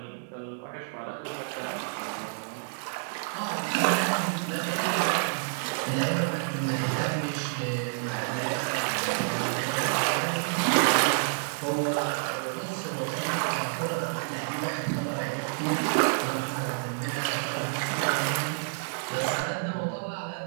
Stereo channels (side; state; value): left; silent; digital silence